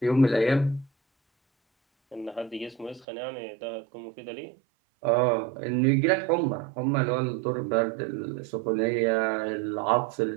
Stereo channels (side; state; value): left; drops out; at 3.1 s